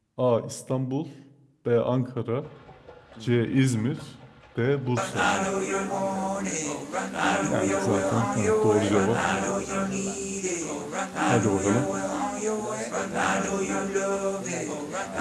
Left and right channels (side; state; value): both; identical; correlation 1.00